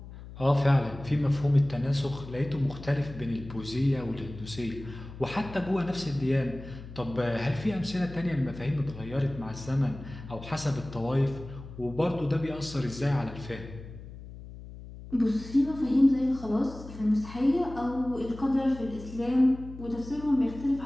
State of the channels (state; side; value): noise; left; hum, 14 dB below the sound